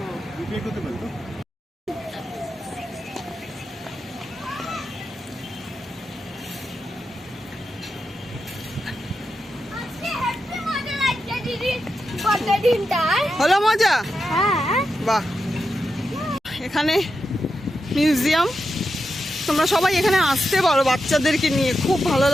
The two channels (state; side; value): normal; both; correlation 0.88